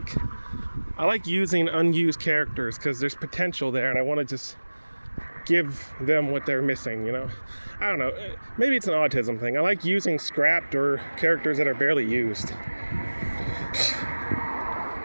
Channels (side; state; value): both; inverted; correlation -1.00